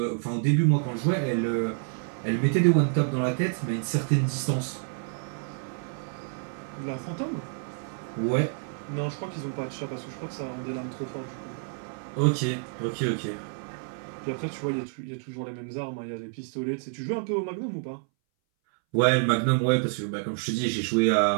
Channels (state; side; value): silent; left; 59 dB below the other